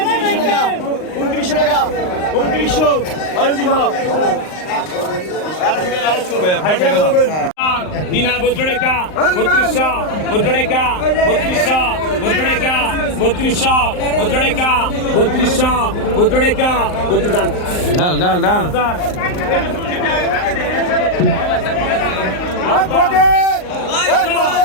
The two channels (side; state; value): right; late; 39 ms